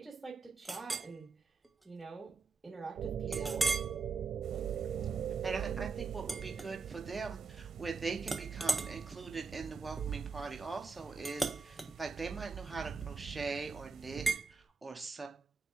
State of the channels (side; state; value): left; quieter; 4.6 dB